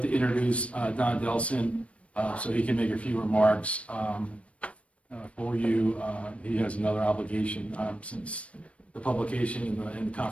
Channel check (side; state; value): right; late; 0.063 ms